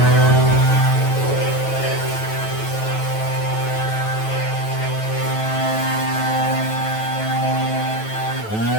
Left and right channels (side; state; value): right; late; 9.2 ms